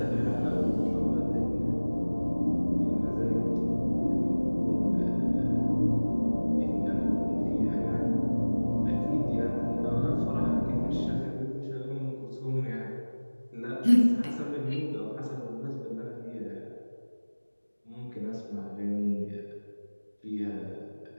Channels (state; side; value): inverted; both; correlation -1.00